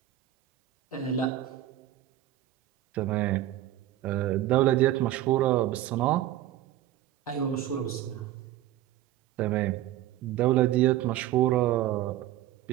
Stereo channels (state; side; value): quieter; left; 13.4 dB